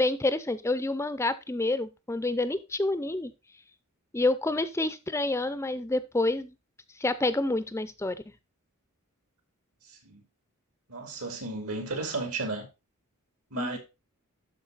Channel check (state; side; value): normal; both; correlation 0.62